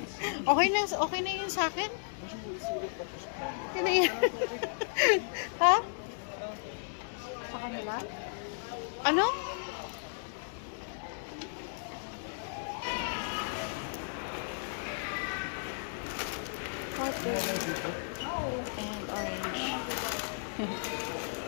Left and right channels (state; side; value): silent; right; digital silence